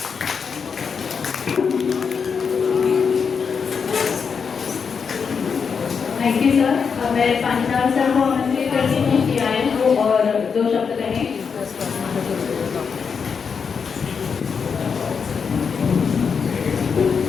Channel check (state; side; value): quieter; right; 6.1 dB